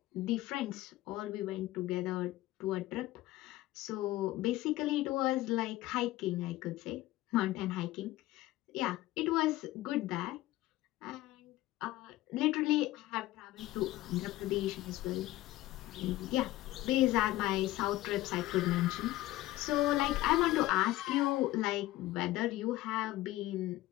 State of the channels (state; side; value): quieter; right; 16.8 dB